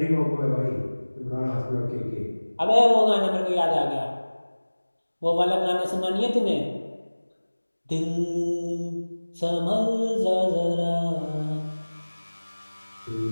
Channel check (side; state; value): both; inverted; correlation -1.00